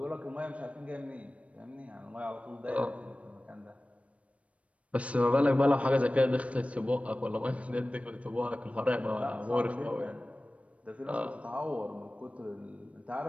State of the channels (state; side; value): late; left; 0.064 ms